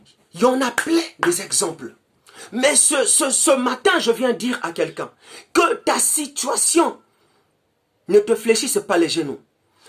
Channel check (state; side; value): identical; both; correlation 1.00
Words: Il y en a plein des exemples. Mais ce matin, je viens dire à quelqu'un que ta situation ne te fléchisse pas les genoux.